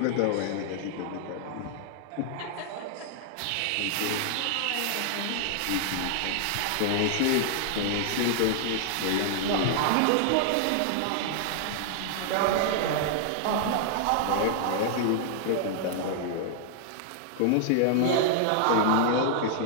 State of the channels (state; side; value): different; both; correlation -0.01